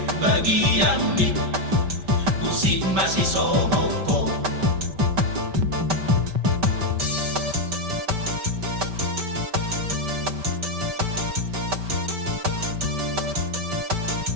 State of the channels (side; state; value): left; late; 5.1 ms